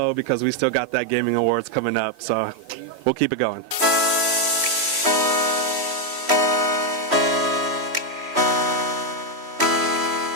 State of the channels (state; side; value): late; left; 3.1 ms